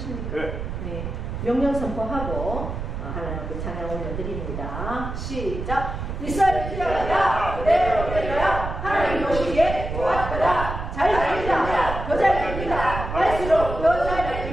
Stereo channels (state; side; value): noise; right; rumble, 6 dB below the sound